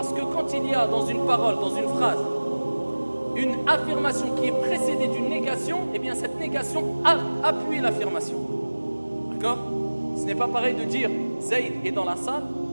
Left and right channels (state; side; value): inverted; both; correlation -1.00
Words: que quand il y a dans une parole, dans une phrase, une affirmation qui est précédée d'une négation, eh bien cette négation appuie l'affirmation. D'accord ? Ce n'est pas pareil de dire Zayd est dans la salle